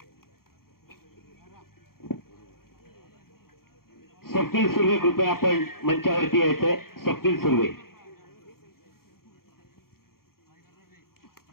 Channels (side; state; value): right; late; 0.93 ms